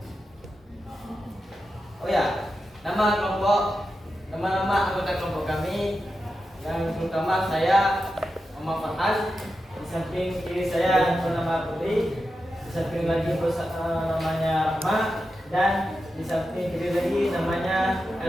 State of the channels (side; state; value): both; normal; correlation 0.90